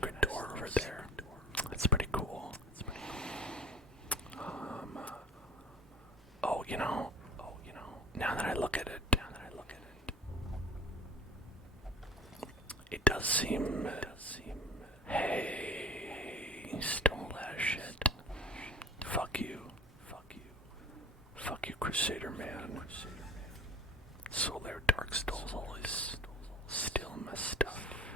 door over there. That's pretty cool. Oh, you know, now that I look at it, it does seem, hey, you stole that shit. Fuck you, Crusader man. Solar Darkstal's always steal my stuff.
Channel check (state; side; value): normal; both; correlation 0.42